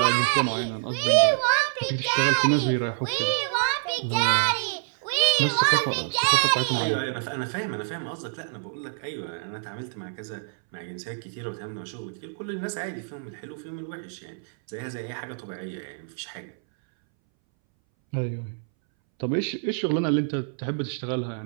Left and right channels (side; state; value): left; silent; 61 dB below the other